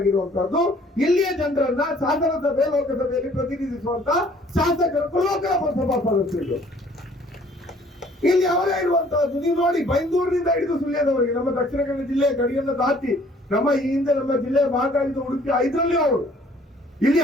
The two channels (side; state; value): both; normal; correlation 0.57